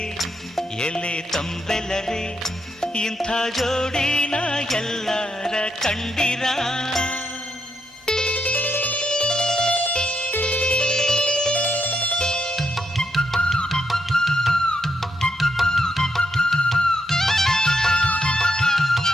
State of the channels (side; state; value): both; normal; correlation 0.80